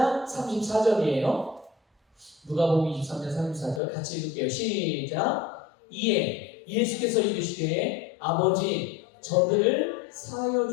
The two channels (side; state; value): right; drops out; at 3.8 s